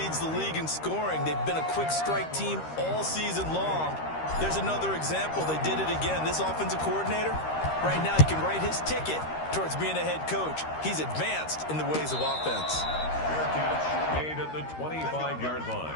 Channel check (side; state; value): right; late; 13 ms